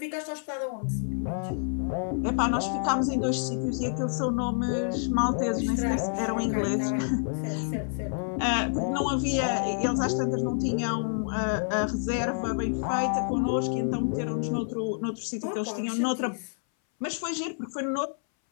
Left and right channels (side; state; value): right; silent; 59 dB below the other